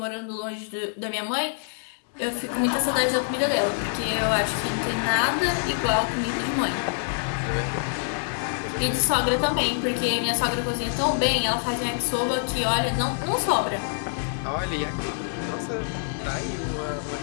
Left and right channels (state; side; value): silent; right; digital silence